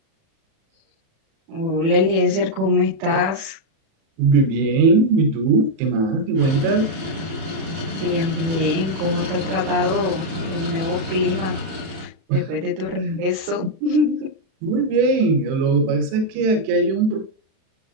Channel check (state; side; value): late; left; 37 ms